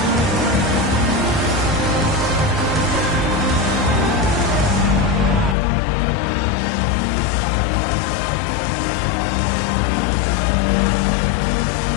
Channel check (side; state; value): right; drops out; at 5.6 s